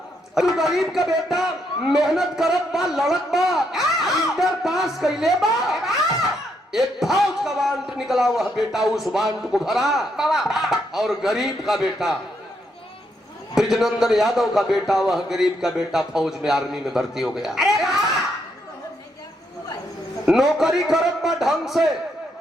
गरीब का बेटा मेहनत करत बा लड़त बा इंटर पास कैले बा। एक फौज का वांट निकला वह बेटा उस वांट को भरा और गरीब का बेटा ब्रिजनंदन यादव का बेटा वह गरीब का बेटा फौज में आर्मी में भर्ती हो गया। नौकरी करत बा ढंग से,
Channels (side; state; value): both; normal; correlation 0.77